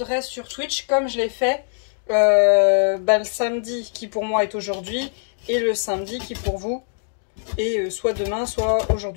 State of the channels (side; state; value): right; silent; 64 dB below the other